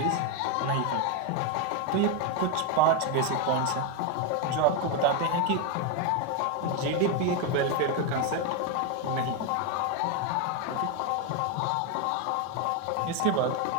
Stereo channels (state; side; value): different; both; correlation 0.02